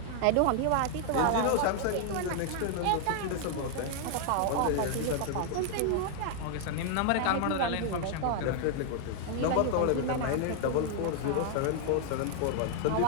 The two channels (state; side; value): different; both; correlation 0.00